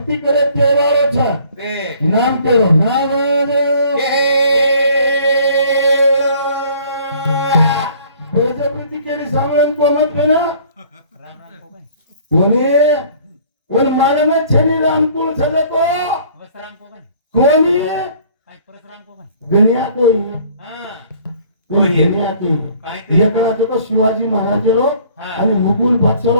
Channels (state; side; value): inverted; both; correlation -0.55